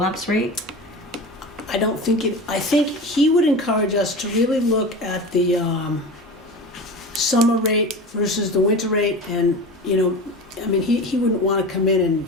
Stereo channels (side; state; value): both; normal; correlation 0.30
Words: rate? I don't think I think he would encourage us to really look at the summer rate versus the winter rate, and, you know, I mean, he wouldn't want to come in